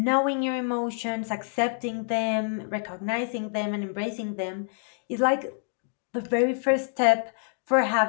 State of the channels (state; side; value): silent; right; digital silence